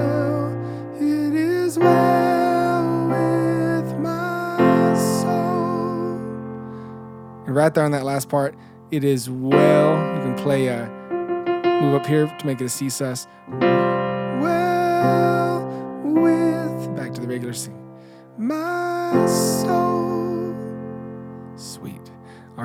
with my soul. And right there on that last part, it is well. You can play move up here to make it a C sus. Well with, back to the regular C. My soul. Sweet. All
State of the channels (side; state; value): both; identical; correlation 1.00